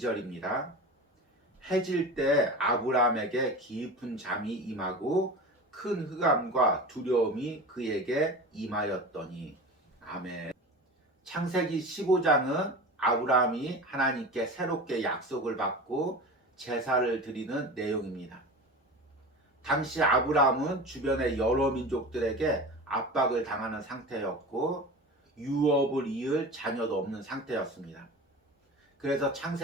해질 때 아브라함에게 깊은 잠이 임하고 큰 흑암과 두려움이 그에게 임하였더니. 아멘. 창세기 15장은 아브라함이 하나님께 새롭게 약속을 받고 제사를 드리는 내용입니다. 당시 아브라함은 주변의 여러 민족들에게 압박을 당하는 상태였고 유업을 이을 자녀도 없는 상태였습니다. 그래서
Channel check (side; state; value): both; normal; correlation 0.32